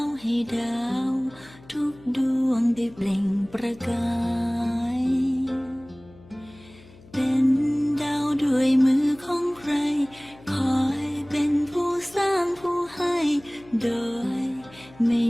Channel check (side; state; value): left; noise; hum, 23 dB below the sound